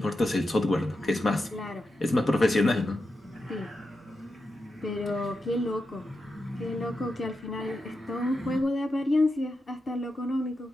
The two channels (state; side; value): normal; both; correlation 0.88